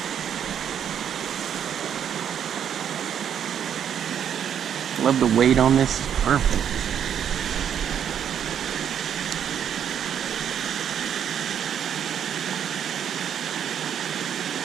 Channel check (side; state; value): left; quieter; 8.9 dB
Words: Love the weight on this. It's perfect.